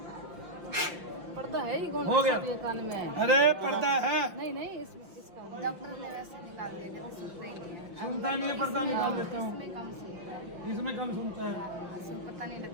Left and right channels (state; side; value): late; left; 5.8 ms